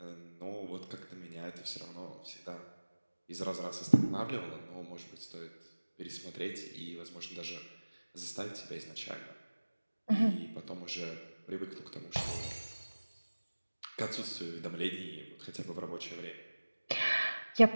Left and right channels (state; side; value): inverted; both; correlation -1.00